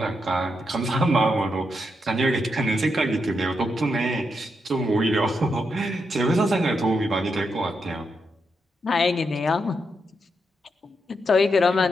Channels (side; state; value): both; normal; correlation 0.83